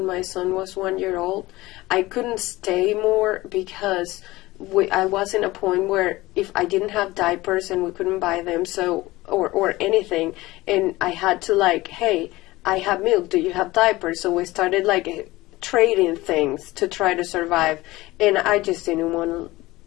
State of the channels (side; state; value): right; quieter; 19.1 dB